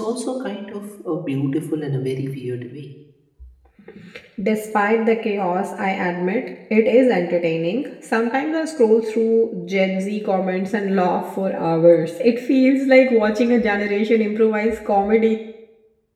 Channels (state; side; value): identical; both; correlation 1.00